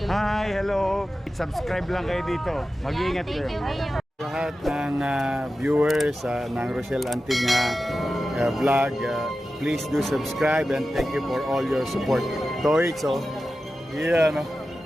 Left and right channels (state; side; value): normal; both; correlation 0.93